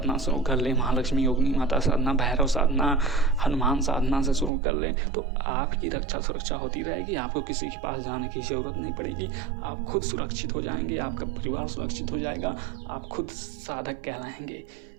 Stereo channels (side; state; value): left; drops out; at 4.5 s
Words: शुरू कर लें, महालक्ष्मी योगिनी माता साधना, भैरव साधना, हनुमान साधना से शुरू कर लें, तो आपकी रक्षा सुरक्षा होती रहेगी। आपको किसी के पास जाने की ज़रूरत नहीं पड़ेगी। आप खुद सुरक्षित हो जाएँगे, आपका परिवार सुरक्षित हो जाएगा, आप खुद साधक कहलाएँगे।